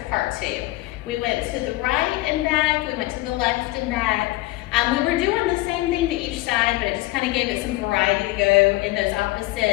part 2. We went to the right and back, we went to the left and back. We were doing the same thing to each side, but it just kind of gave it some variety to go in those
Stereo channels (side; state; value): right; quieter; 19.4 dB